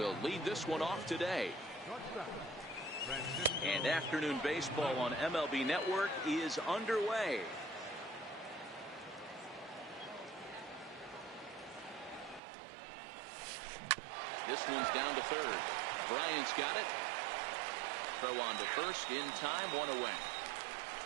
lead this one off today. And afternoon baseball on MLB Network is underway. This one's down to third. Bryant's got it. Throw on to first in time, one away.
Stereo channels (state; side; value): drops out; left; at 12.4 s